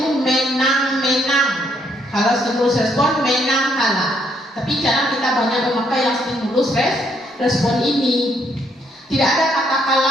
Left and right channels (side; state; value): both; normal; correlation 0.71